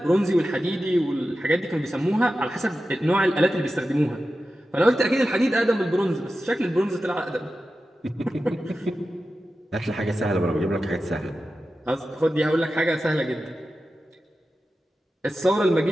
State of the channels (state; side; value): normal; both; correlation 0.92